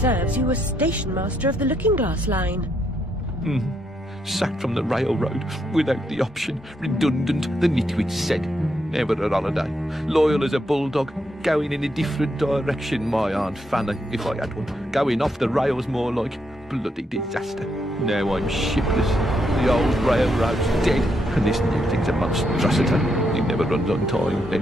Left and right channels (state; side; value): normal; both; correlation 0.78